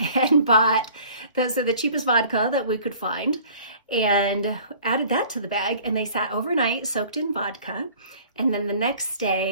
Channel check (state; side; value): inverted; both; correlation -0.50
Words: and bought the cheapest vodka that we could find and added that to the bag. And they sat overnight soaked in vodka. And then the next